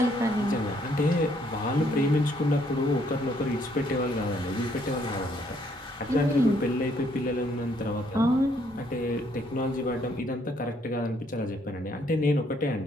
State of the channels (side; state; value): both; normal; correlation 0.68